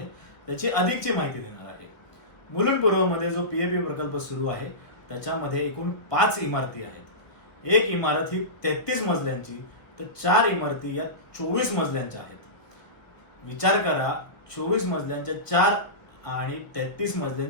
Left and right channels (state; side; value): late; right; 1.1 ms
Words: त्याची अधिकची माहिती देणार आहे. मुलुंड पूर्वमध्ये जो पीएपी प्रकल्प सुरू आहे त्याच्यामध्ये एकूण 5 इमारती आहेत. एक इमारत ही 33 मजल्यांची तर 4 इमारती या 24 मजल्यांच्या आहेत. विचार करा, 24 मजल्यांच्या 4 आणि 33